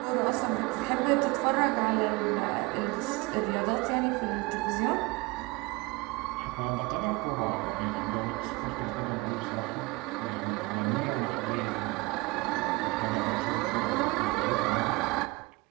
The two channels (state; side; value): quieter; left; 24.9 dB